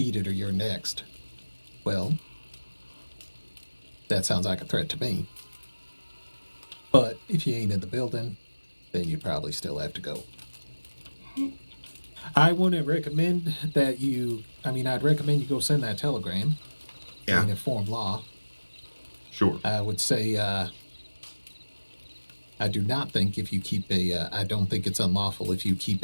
it or you're next. Well, that sounds like a threat to me. But if you ain't in the building, then you probably still have to go. I wouldn't recommend that I'd recommend you go send that telegram and inform law. Sure. I would say, I do not think if you keep I don't think it's unlawful if you keep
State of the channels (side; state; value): both; inverted; correlation -1.00